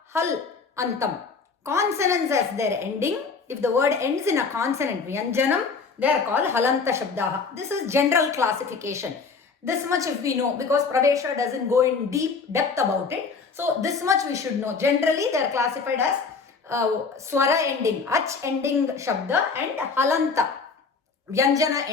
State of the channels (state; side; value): quieter; right; 4.9 dB